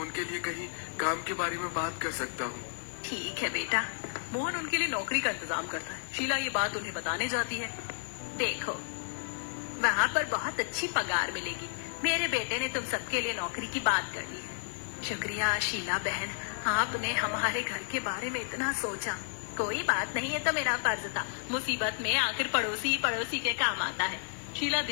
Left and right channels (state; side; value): silent; right; digital silence